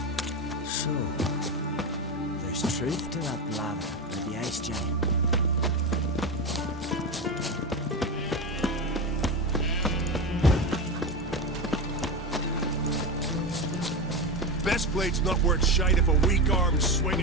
So, there's truth to that blather about the ice giant. Best blade's not worth shite if a weak arm's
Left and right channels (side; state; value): both; normal; correlation 0.17